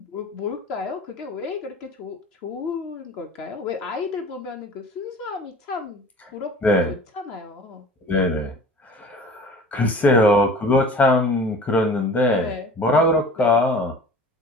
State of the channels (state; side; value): normal; both; correlation 0.42